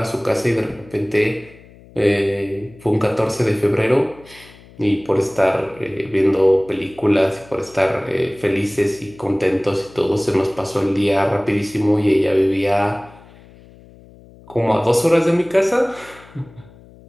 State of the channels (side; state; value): left; noise; hum, 23 dB below the sound